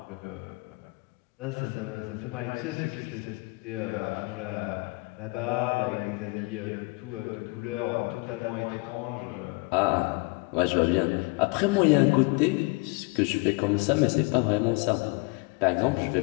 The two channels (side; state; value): right; quieter; 28.1 dB